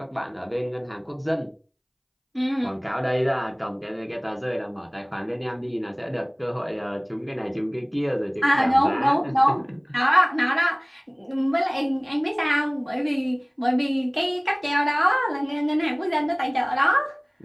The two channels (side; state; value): both; identical; correlation 1.00